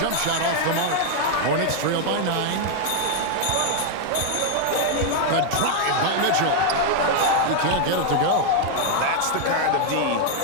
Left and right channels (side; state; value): both; different; correlation 0.00